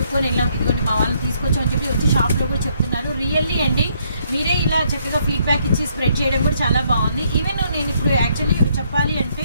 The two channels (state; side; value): inverted; both; correlation -0.70